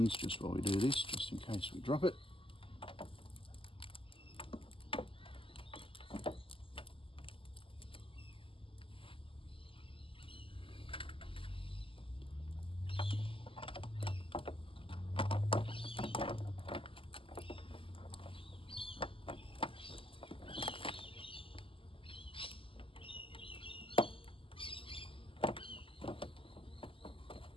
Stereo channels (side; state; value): right; late; 0.25 ms